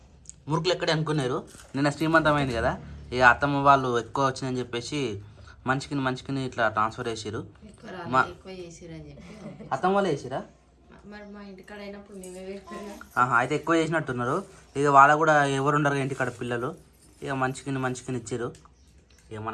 మురుకులు ఎక్కడే అనుకున్నారు. నిన్న శ్రీమంతమైంది కదా, ఇక అత్తమ్మ వాళ్ళు ఎక్కువ వచ్చిందని చెప్పేసి మంచికిని ఇట్లా ట్రాన్స్ఫర్ చేసిరు. అత్తమ్మ వాళ్ళు వేసిరా? అయితే ఎక్కువ చేసినట్టున్నారు. ఇక వాళ్ళ కూడా ఎవరు ఉండరు ఇంటికాడ పిల్లలు. ఇక మంచికిని ఇచ్చారు. ఇక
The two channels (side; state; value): both; identical; correlation 1.00